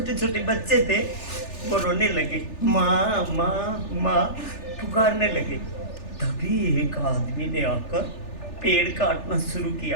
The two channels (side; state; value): right; late; 3.4 ms